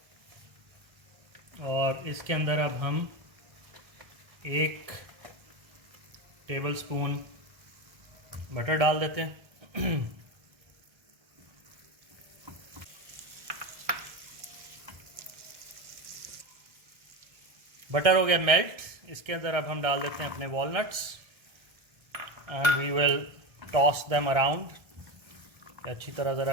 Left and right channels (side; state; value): left; late; 1.3 ms